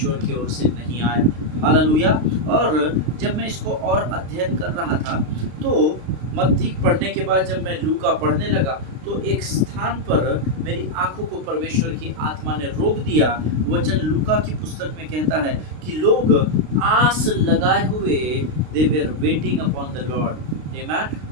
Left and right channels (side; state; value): left; late; 32 ms